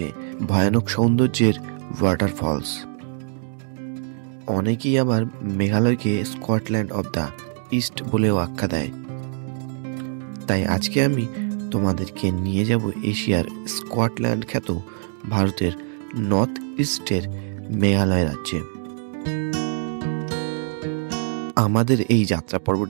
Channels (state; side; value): silent; left; digital silence